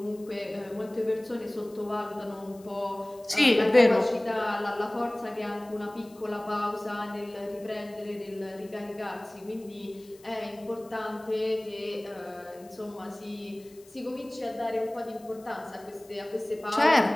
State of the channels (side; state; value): left; noise; hiss, 26 dB below the sound